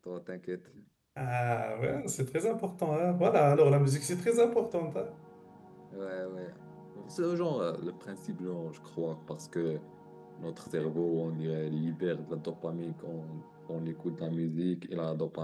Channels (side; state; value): both; identical; correlation 1.00